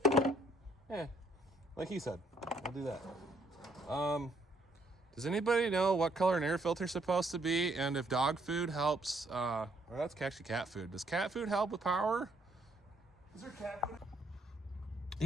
it. yeah, like he said, we'll do that. Does anybody know what color an air filter is supposed to be, and if dog food helps? Well, that's actually cat food. Does cat food help with power? Is there cat food?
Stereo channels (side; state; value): both; normal; correlation 0.69